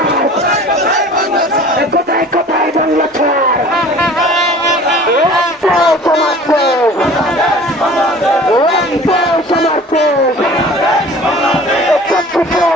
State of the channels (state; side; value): normal; both; correlation 0.44